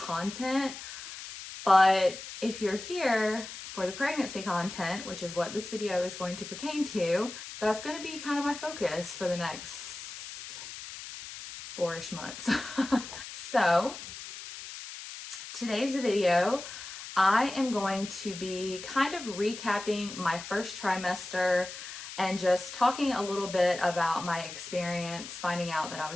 But if you're here for the pregnancy content, which is what this video is going to pertain to, that's going to be kind of my focus for the next 4-ish months. So today's video, I am going to be kind of recapping my first trimester and just talking a little bit about my experience finding out that I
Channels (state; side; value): noise; left; hiss, 11 dB below the sound